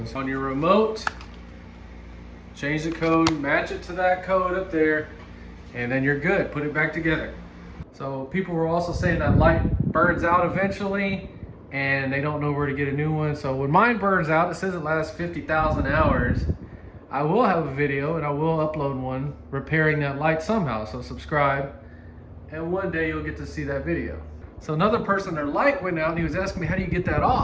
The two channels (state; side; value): identical; both; correlation 1.00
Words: On your remote, change the code, match it to that code up there, and then you're good. Put it back together. So people were also saying that light burns out eventually and they don't know where to get a new one. So when mine burns out, it says it lasts 50,000 hours. I will have a video and I will upload one repairing that light somehow. So subscribe and one day you'll get to see that video. So another person, their light went out and he was asking me, how do you get that